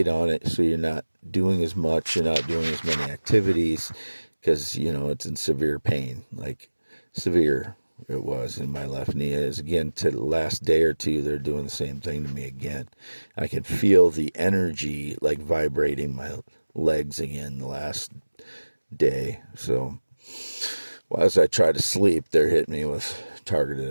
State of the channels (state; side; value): inverted; both; correlation -1.00